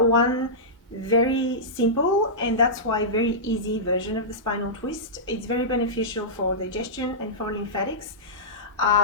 very simple, and that's why very easy version of the spinal twist. It's very beneficial for digestion and for lymphatics.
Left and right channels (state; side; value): normal; both; correlation -0.15